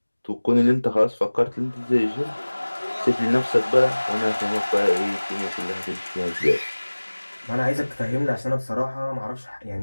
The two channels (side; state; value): both; inverted; correlation -1.00